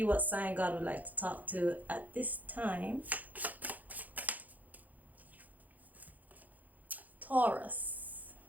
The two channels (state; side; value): late; left; 0.081 ms